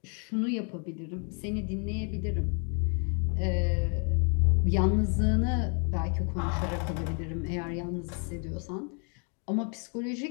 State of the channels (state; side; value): quieter; right; 39.3 dB